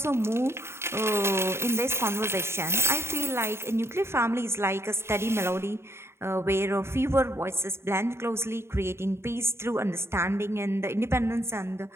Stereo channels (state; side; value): late; left; 0.12 ms